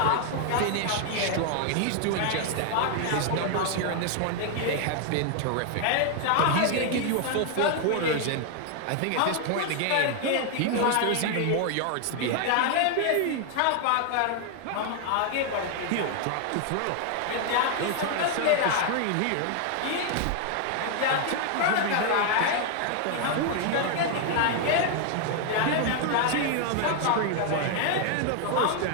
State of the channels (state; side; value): different; both; correlation 0.00